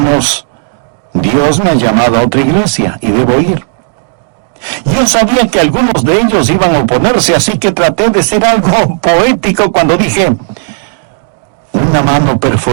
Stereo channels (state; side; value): silent; left; digital silence